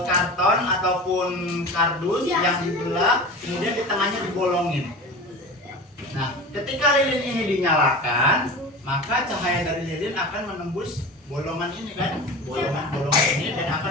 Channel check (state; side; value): normal; both; correlation 0.32